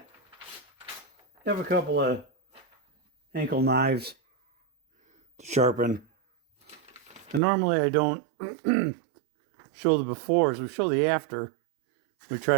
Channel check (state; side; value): drops out; left; at 7.4 s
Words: have a couple of Henckels knives to sharpen. And normally I don't show the befores, we show the after. We try